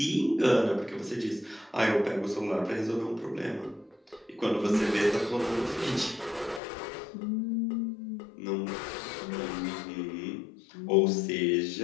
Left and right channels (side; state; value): right; drops out; at 6.6 s